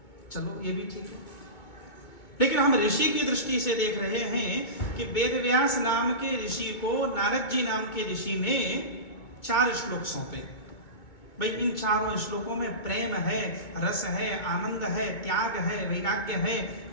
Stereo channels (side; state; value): right; late; 2.2 ms